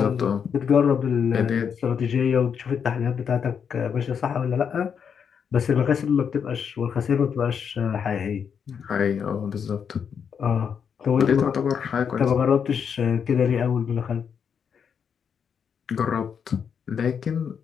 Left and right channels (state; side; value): quieter; right; 7.2 dB